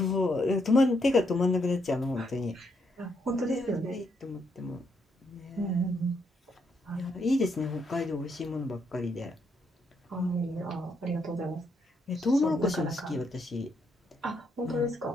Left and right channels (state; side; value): normal; both; correlation 0.76